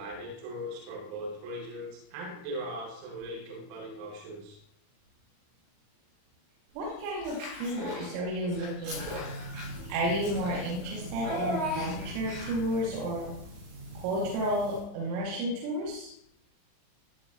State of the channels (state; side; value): late; left; 39 ms